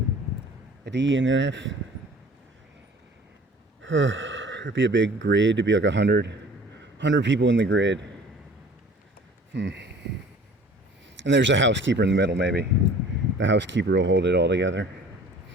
A D and an F. It'd be a big grid. It'd be like 100 people in the grid. And there's a housekeeper in the middle, maybe. The housekeeper will hold it all together.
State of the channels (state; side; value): normal; both; correlation 0.48